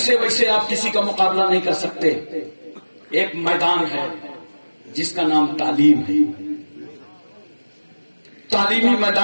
ویسے آپ کسی کا مقابلہ نہیں کر سکتے. ایک میدان ہے جس کا نام تعلیم ہے. تعلیمی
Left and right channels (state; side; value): inverted; both; correlation -1.00